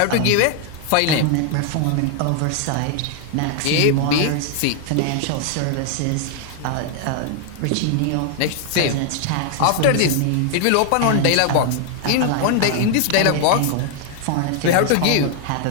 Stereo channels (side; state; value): both; different; correlation 0.00